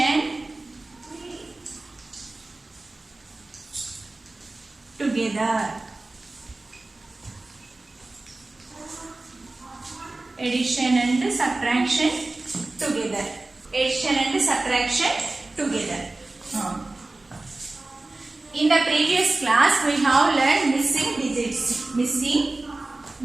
together. Addition and subtraction together. Addition and subtraction together. In the previous class, we have learned missing digits. Missing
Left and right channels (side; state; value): left; quieter; 3.0 dB